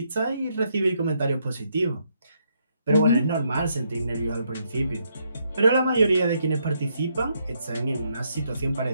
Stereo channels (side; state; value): both; inverted; correlation -0.75